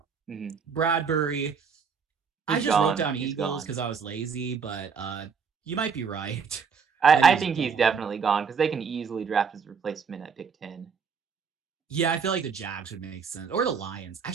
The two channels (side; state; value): left; quieter; 6.0 dB